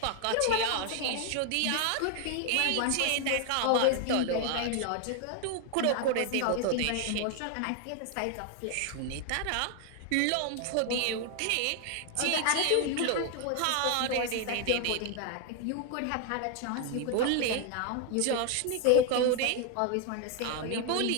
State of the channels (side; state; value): both; different; correlation 0.00